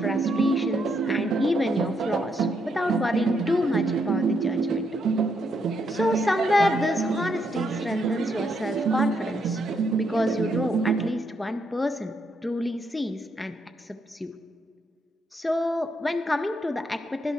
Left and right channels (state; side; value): normal; both; correlation 0.77